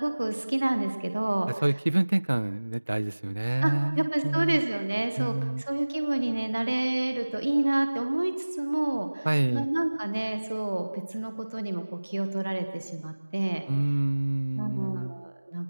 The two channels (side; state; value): both; inverted; correlation -1.00